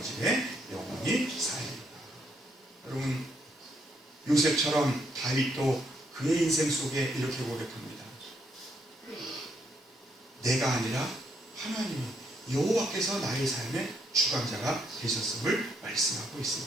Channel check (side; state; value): both; normal; correlation 0.74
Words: 집에 영원히 살리라. 여러분 요셉처럼 다윗도 그의 인생 속에 이렇게 고백합니다. 내가 아니라 하나님이 여호와께서 나의 삶의 주관자가 되셨음을 말씀하고